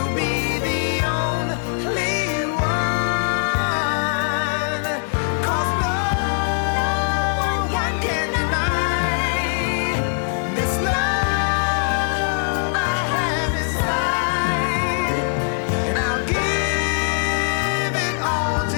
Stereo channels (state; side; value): silent; right; 58 dB below the other